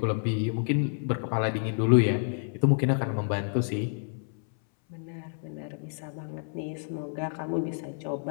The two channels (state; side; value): silent; right; 59 dB below the other